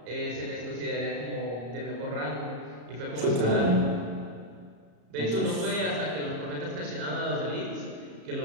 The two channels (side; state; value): left; late; 34 ms